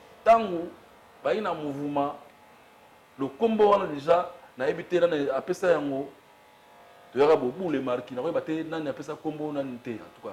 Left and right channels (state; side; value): identical; both; correlation 1.00